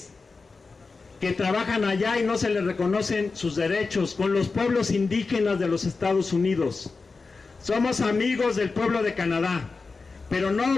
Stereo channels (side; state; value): right; quieter; 4.2 dB